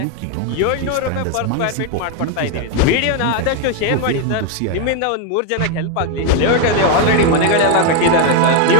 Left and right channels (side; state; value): both; different; correlation 0.01